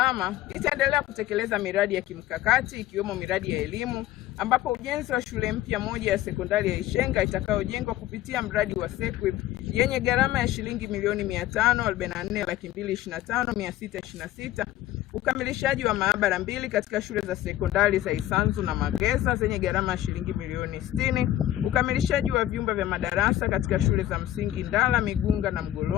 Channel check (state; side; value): quieter; right; 13.8 dB